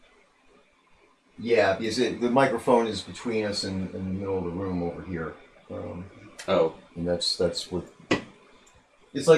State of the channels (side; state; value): both; identical; correlation 1.00